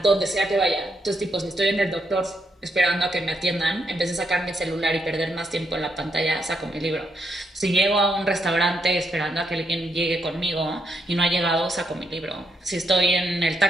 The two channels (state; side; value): normal; both; correlation 0.79